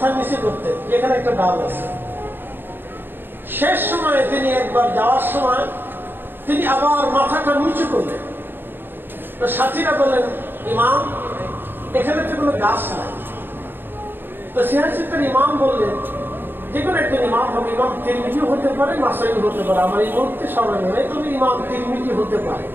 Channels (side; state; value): left; late; 0.097 ms